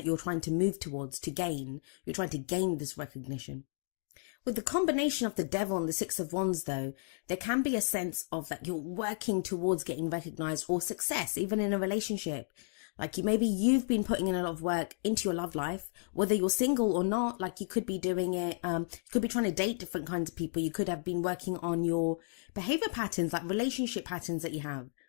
you're trying to move towards, to gain. You're trying to gain this recognition. With the combination of the Devil and the Six of Wands, though, there can be a sense of that you're working towards getting recognized or success, even in a relationship. Maybe you've been putting in a lot of work into your love life, whether you're single or not. You could be doing it, you could be trying to date different kinds of people. You could have been working on your behavior patterns, relationship patterns that you have.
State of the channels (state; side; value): silent; right; digital silence